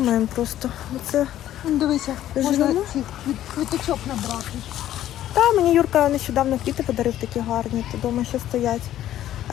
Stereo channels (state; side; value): quieter; right; 12.5 dB